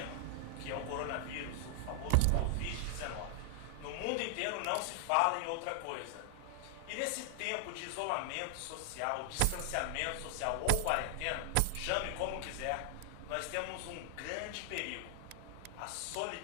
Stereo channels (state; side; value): different; both; correlation 0.00